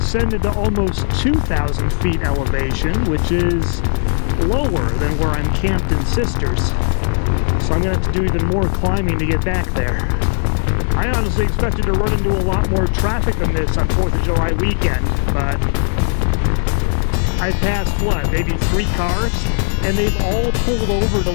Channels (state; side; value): silent; right; 68 dB below the other